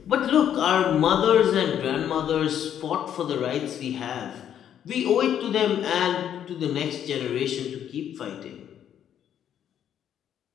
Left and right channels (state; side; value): quieter; right; 9.8 dB